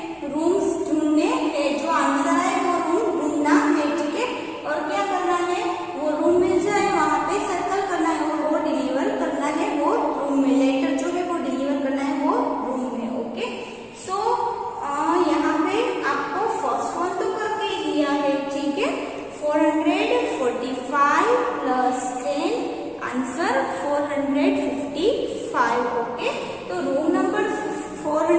रूम्स ढूंढने हैं, जो आंसर है वो रूम ढूंढना है. ठीक है, और क्या करना है, वो रूम मिल जाए वहां पे सर्कल करना है और वो डिलीवर करना है वो रूम में. लेटर जो है वो डिलीवर करना है वो रूम में. ओके, सो यहाँ पे आपको फर्स्ट वन तो करके दिया है. ठीक है, 445 प्लस 10 आंसर 455. ओके, तो रूम नंबर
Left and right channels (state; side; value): identical; both; correlation 1.00